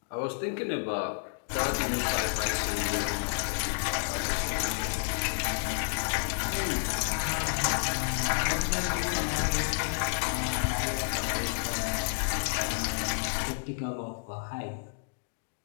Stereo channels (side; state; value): right; silent; digital silence